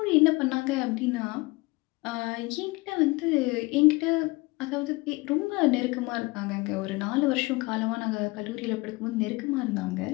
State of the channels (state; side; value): quieter; right; 23.7 dB